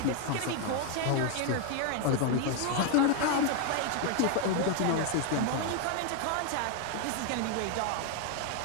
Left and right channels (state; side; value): different; both; correlation 0.01